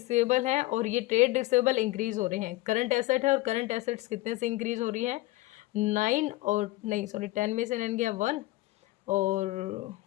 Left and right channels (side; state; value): right; quieter; 19.2 dB